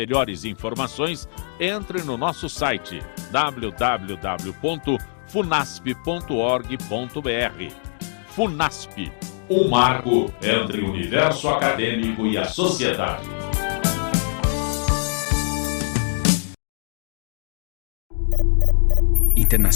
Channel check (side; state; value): right; silent; digital silence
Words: informações, entre no nosso site www.funasp.org.br. FUNASP, um marco entre o universo acadêmico e a sociedade.